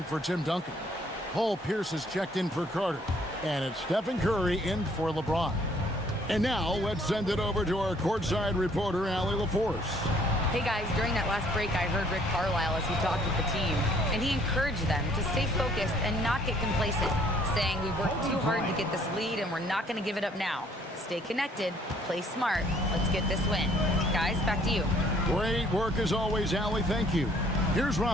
for Tim Duncan. Paul Pierce is checked in for Carter. And it's Stephen Curry in for LeBron. And now let's send it over to our courtside reporter, Allie LaForce. Hey guys, during that last break, I heard Rick Carlisle as he talked with the team, and he encouraged them to stay focused and not get complacent, saying we worked too hard to get this lead and we're not going to give it up now. Stay connected, play smart, let's get this win. Guys, back to you. Great work as always, Allie, thank you. Here's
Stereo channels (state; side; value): normal; both; correlation 0.61